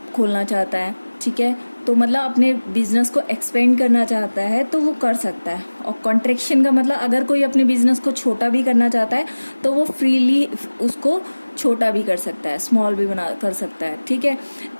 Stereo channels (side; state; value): both; inverted; correlation -1.00